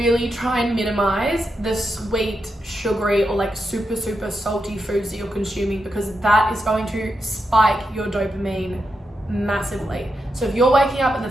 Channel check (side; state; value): both; normal; correlation 0.85